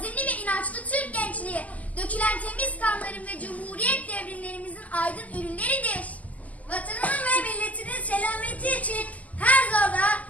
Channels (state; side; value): late; right; 0.075 ms